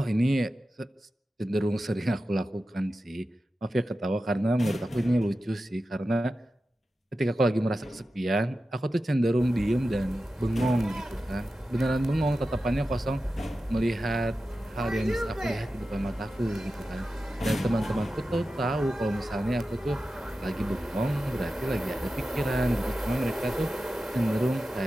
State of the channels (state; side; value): normal; both; correlation 0.93